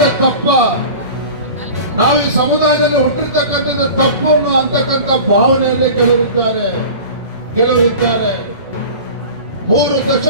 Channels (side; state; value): both; inverted; correlation -0.38